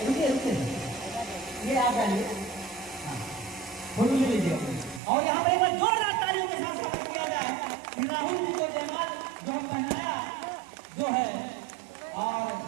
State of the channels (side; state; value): left; drops out; at 5.0 s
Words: ये आप डालिए, फोटो ले लीजिए। और यहाँ पर एक बार जोरदार तालियों के साथ स्वागत किया जाए कि राहुल जी को जयमाल जो हम पहनाया जो है, और